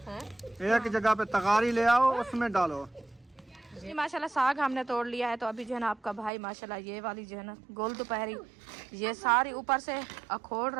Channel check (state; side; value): drops out; left; at 6.3 s